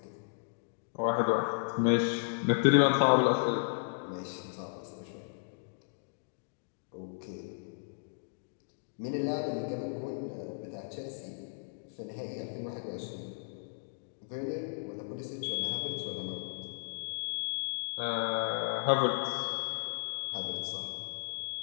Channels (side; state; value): right; silent; digital silence